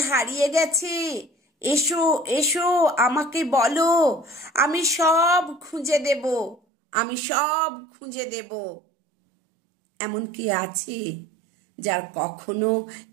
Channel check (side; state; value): left; drops out; at 6.6 s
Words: হারিয়ে গেছে, এসো এসো আমাকে বলো, আমি সব খুঁজে দেব, আমি সব খুঁজে দেব। এমন কি আছে যার কখনো